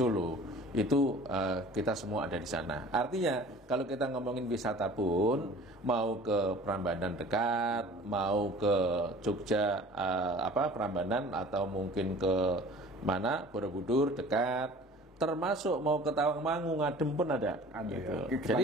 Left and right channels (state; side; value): normal; both; correlation 0.45